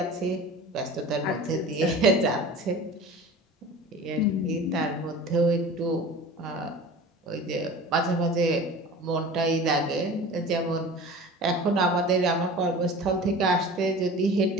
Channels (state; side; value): normal; both; correlation 0.38